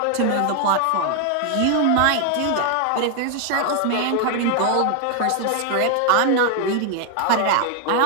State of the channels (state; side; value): different; both; correlation 0.00